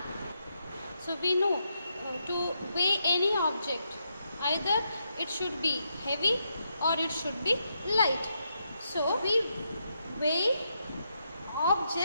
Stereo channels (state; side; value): inverted; both; correlation -0.81